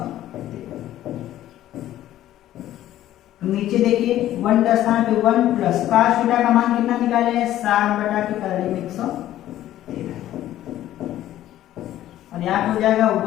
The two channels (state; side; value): quieter; right; 13.2 dB